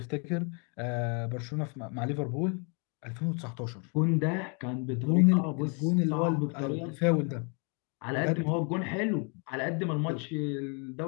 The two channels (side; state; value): right; quieter; 36.7 dB